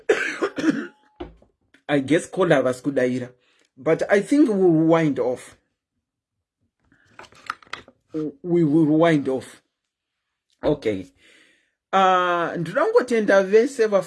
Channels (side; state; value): both; identical; correlation 1.00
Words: I guess caller was kudaira. But I think we will wind off. We will wind off. Okay. Ndrangotenda vese